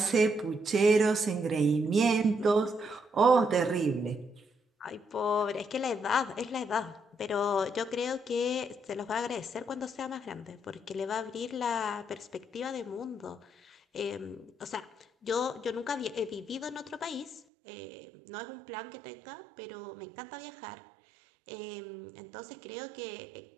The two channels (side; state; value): left; drops out; at 17.4 s